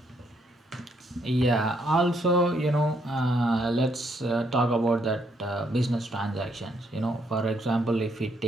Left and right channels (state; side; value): normal; both; correlation 0.72